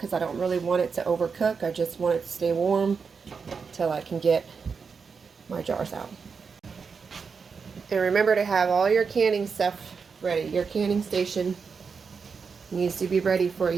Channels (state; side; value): quieter; left; 5.5 dB